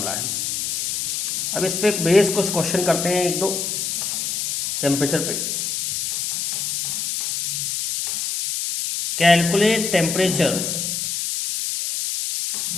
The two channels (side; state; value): left; noise; hiss, 2 dB below the sound